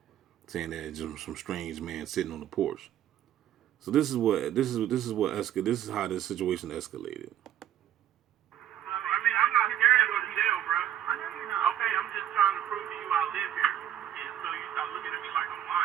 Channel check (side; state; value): left; quieter; 11.1 dB